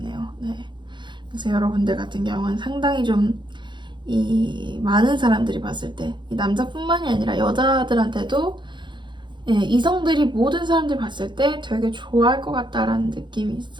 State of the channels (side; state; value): left; late; 0.23 ms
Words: 네. 그래서 여러분들 같은 경우는 상당히 좀 많은 사람들이 봤을 때 이 남자뿐만이 아니라 여자들한테도 이성들이 모든 사람들이 봤을 때 되게 좋아할 것 같다라는 느낌이